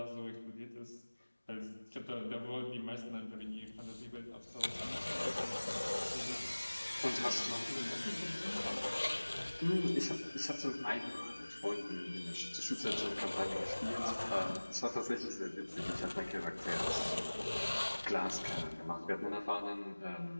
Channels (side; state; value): both; inverted; correlation -1.00